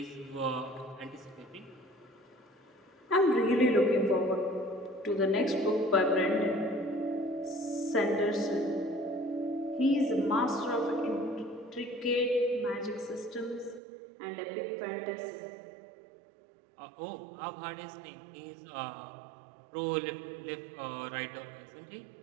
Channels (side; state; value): left; drops out; at 13.8 s